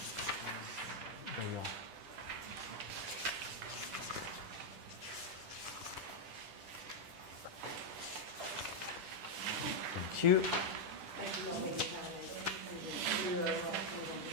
There you are. Thank you.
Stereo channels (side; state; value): left; late; 10 ms